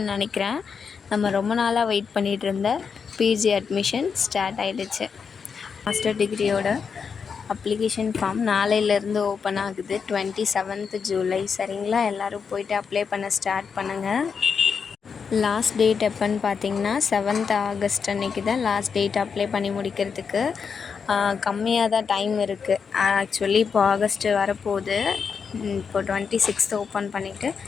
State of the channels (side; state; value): right; quieter; 6.0 dB